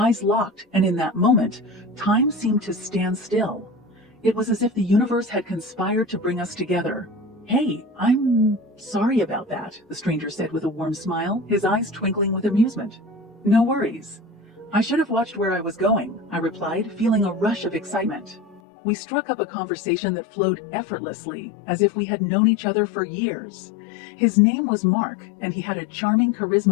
locked, and in that moment, time seemed to stand still. It was as if the universe had conspired to bring us together. "Hey, I'm sorry about that," the stranger said with a warm smile, his eyes twinkling with amusement. "No worries. I should have watched where I was going," I replied, feeling a rush of excitement. We struck up a conversation that flowed effortlessly, as if we had known each other for years. His name was Mark, and he had a charming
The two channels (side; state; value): right; drops out; at 18.6 s